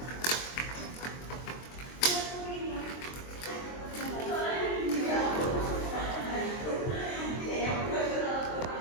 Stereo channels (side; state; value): right; late; 23 ms